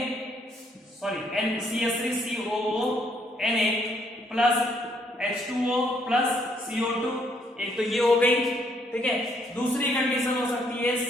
CH3COO Na plus H2O plus CO2, एक तो ये हो गई। ठीक है, दूसरी कंडीशन हो सकती है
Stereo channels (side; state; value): both; normal; correlation 0.69